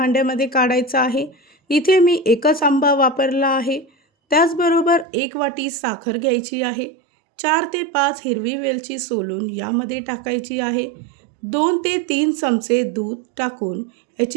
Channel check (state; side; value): drops out; left; at 5.1 s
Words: काढायचा आहे. इथे मी एकच आंबा वापरला आहे. त्याचबरोबर 1 वाटी साखर घ्यायची आहे. 4 ते 5 हिरवी वेलची सोलून यामध्ये टाकायची आहे. 2 ते 3 चमचे दूध टाकून